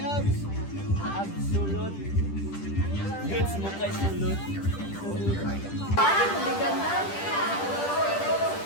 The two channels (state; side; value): late; right; 10 ms